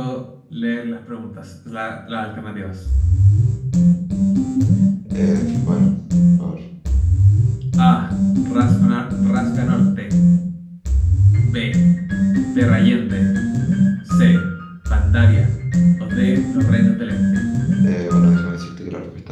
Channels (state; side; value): identical; both; correlation 1.00